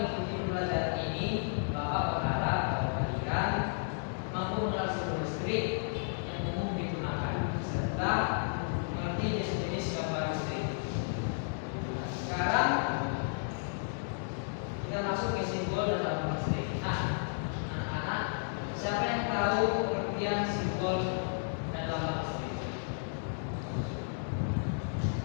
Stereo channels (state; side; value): silent; right; digital silence